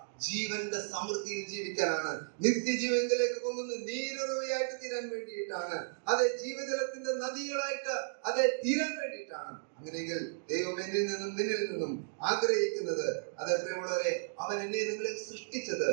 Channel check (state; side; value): silent; left; digital silence